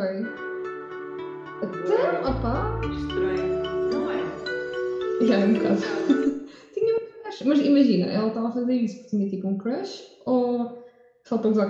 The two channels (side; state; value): both; identical; correlation 1.00